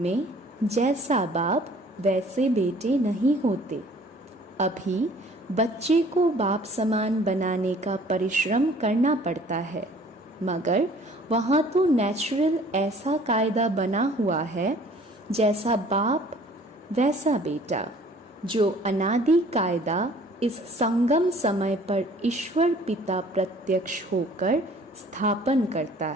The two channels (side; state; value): both; normal; correlation 0.53